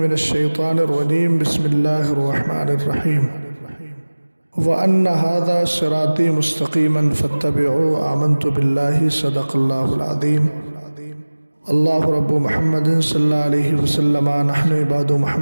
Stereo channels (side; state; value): both; inverted; correlation -1.00